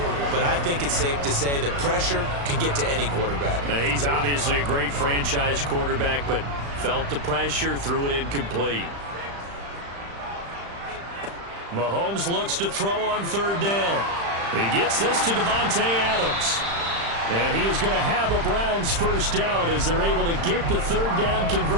but I think it's safe to say that pressure can get to any quarterback. Now, he's obviously a great franchise quarterback, but felt the pressure, threw it incomplete. Mahomes looks to throw on 3rd down. He gets this to Davante Adams. And he is going to have a Browns first down as they're able to get the 3rd down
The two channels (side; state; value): left; late; 35 ms